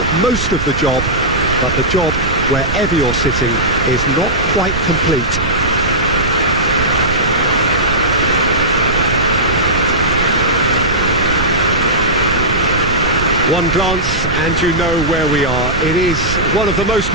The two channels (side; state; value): right; noise; rumble, 6 dB below the sound